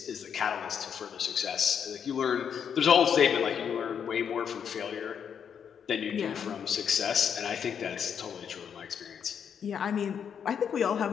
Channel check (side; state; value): right; quieter; 7.7 dB